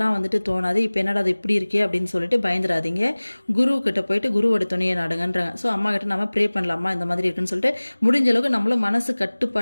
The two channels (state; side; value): inverted; both; correlation -1.00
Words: வந்துட்டு தோணாது. இப்போ என்னடா அது இப்படி இருக்கே அப்படின்னு சொல்லிட்டு பயந்துடாதீங்க. குருக்கிட்ட போயிட்டு குருவோட துணையை நாடுங்கன்றாங்க. ஸோ அம்மா கிட்ட நம்ம ப்ரே பண்ணலாமா இந்த மாதிரி இருக்குன்னு சொல்லிட்டு முடிஞ்ச அளவுக்கு நம்மளும் மனசு